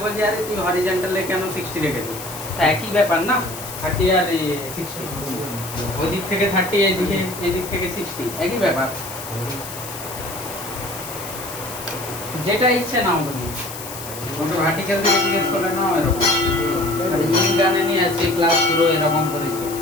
বলছে আরে তুই হরিজন্টালে কেন 60 রেখেছো? তা একই ব্যাপার না, 30 আর 60, ওদিক থেকে 30 এদিক থেকে 60 একই ব্যাপার। যেটা ইচ্ছে নাও তুমি, ওটা ভার্টিক্যাল থেকে জিজ্ঞেস করলে না এরকম। আর ইনগানে নিয়ে আছে ক্লাস পুরো এরকম করেছে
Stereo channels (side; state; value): left; noise; hiss, 11 dB below the sound